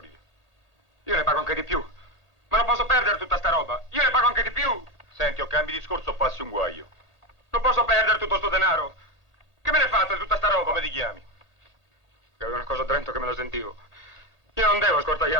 lire? Io ne pago anche di più. Ma non posso perdere tutta sta roba. Io ne pago anche di più. Senti, o cambi discorso o passi un guaio. Non posso perdere tutto sto denaro. Che me ne fate di tutta sta roba? Come ti chiami? Che avevo una cosa a Trento che me lo sentivo. Io non devo ascoltare gli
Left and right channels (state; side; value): late; left; 1.4 ms